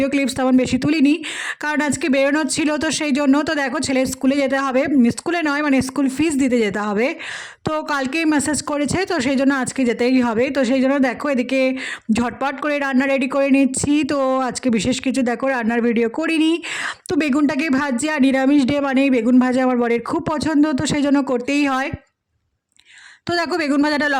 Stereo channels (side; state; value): both; identical; correlation 1.00